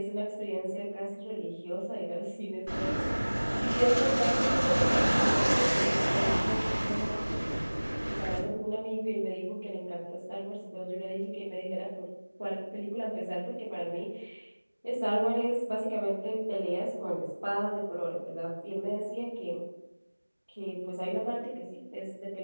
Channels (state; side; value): inverted; both; correlation -1.00